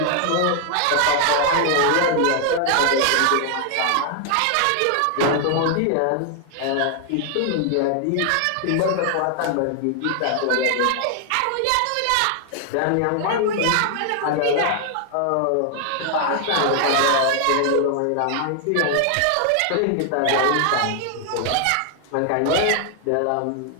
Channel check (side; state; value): both; different; correlation 0.00